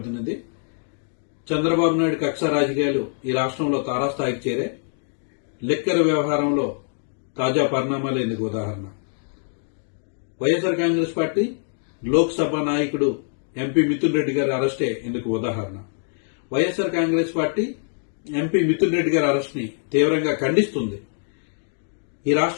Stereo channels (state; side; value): silent; right; digital silence